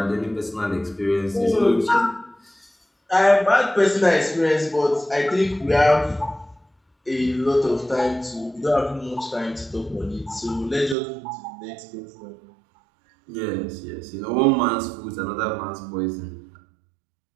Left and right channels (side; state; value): left; drops out; at 11.0 s